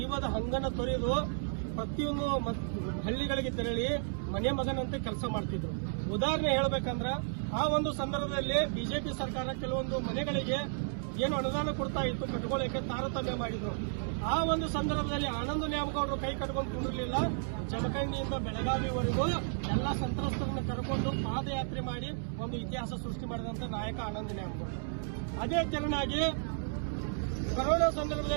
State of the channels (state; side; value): silent; left; digital silence